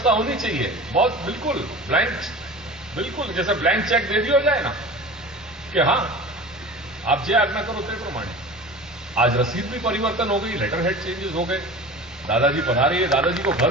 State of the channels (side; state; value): both; normal; correlation 0.36